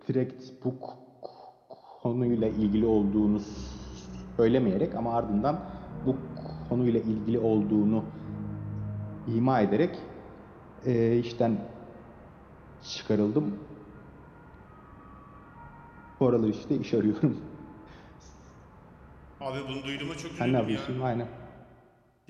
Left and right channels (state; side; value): identical; both; correlation 1.00